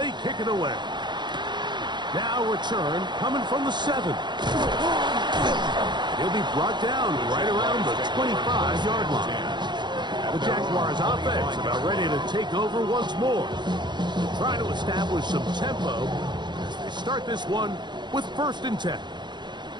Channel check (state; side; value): late; left; 0.21 ms